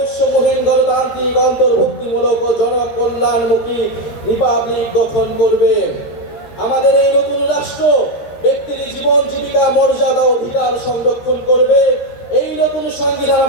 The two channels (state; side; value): late; right; 13 ms